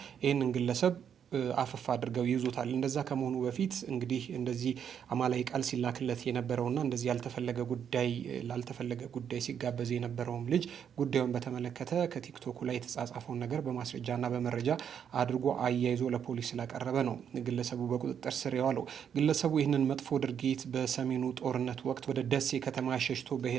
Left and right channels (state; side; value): quieter; left; 8.2 dB